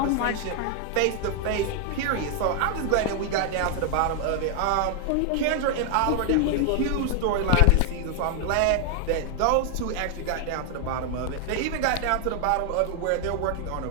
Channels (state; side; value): different; both; correlation 0.00